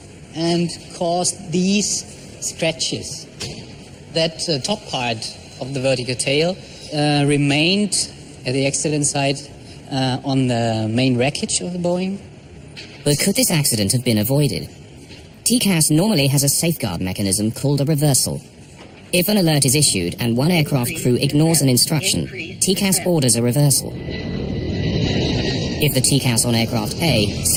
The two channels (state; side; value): identical; both; correlation 1.00